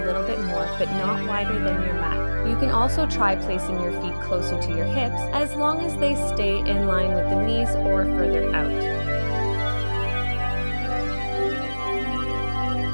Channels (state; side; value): inverted; both; correlation -1.00